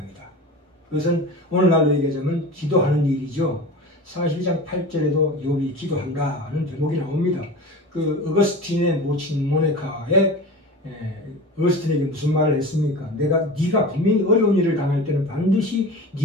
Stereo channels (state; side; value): normal; both; correlation 0.33